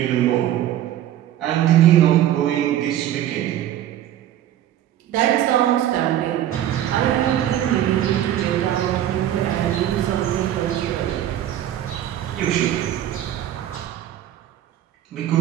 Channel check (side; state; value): left; quieter; 12.0 dB